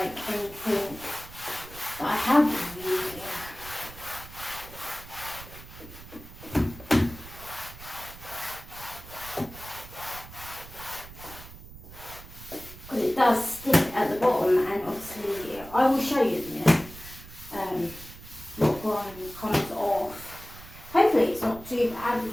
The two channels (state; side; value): noise; right; rumble, 16 dB below the sound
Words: anything that I have been using. Because it does stick at the bottom, and obviously I will show you in a minute what grime comes off. Hopefully it's not too bad,